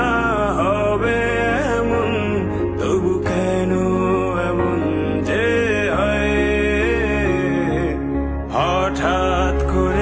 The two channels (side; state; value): both; identical; correlation 1.00